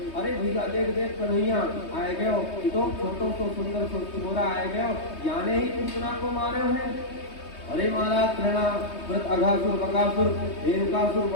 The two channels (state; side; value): late; right; 3.2 ms